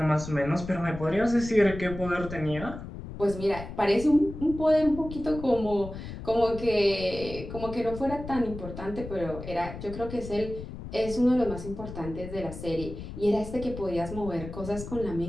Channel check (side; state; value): left; noise; rumble, 10 dB below the sound